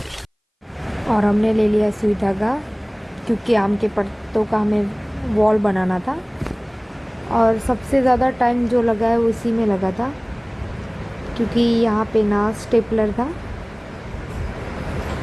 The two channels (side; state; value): both; identical; correlation 1.00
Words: और हमने ले लिया सुई धागा, क्योंकि आम के पत्तों का हमें वॉल बनाना था। और सबसे ज़्यादा टाइम जो लगा है उसी में लगा था, क्योंकि यहाँ पे ना स्टेपलर था,